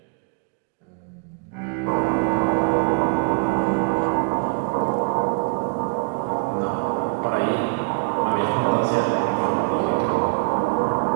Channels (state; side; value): quieter; left; 35.6 dB